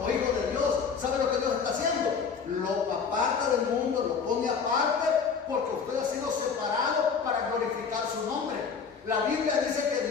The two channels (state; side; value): quieter; right; 5.9 dB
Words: hijo de Dios, ¿sabe lo que Dios está haciendo? Lo aparta del mundo, lo pone aparte, porque usted ha sido separado para glorificar su nombre. La Biblia dice